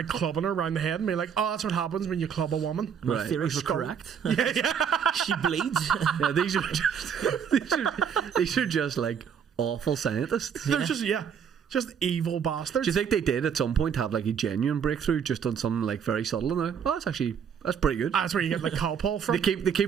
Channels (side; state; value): left; quieter; 7.5 dB